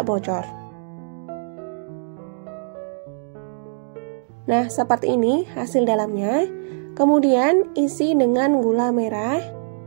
bocor. Nah, seperti ini hasil dalamnya. Kemudian isi dengan gula merah.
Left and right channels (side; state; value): left; silent; digital silence